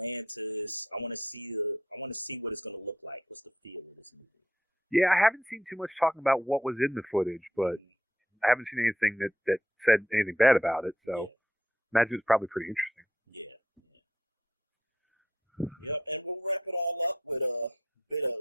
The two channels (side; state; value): both; normal; correlation 0.72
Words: Yeah, I haven't seen too much talking about what was in the footage, but I haven't seen anything that said anything bad about it. So imagine it's probably pretty interesting.